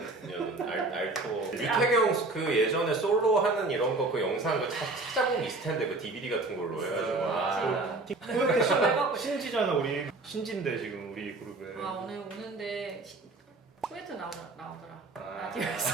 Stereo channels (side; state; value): left; quieter; 3.2 dB